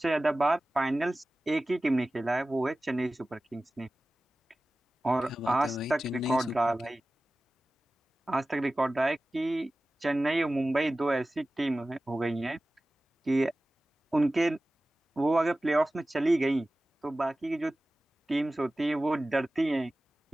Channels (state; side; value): normal; both; correlation 0.96